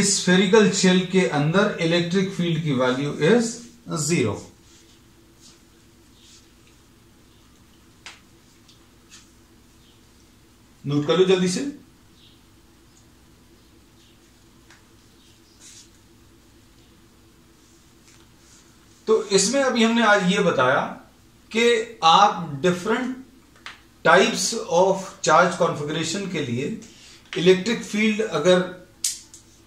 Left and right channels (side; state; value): both; identical; correlation 1.00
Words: स्फेरिकल शेल के अंदर इलेक्ट्रिक फील्ड की वैल्यू इज 0। नोट कर लो जल्दी से। तो इसमें अभी हमने आज ये बताया कि आप different types of charge configuration के लिए इलेक्ट्रिक फील्ड अगर